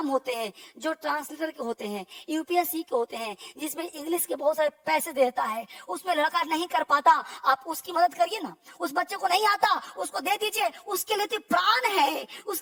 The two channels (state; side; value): identical; both; correlation 1.00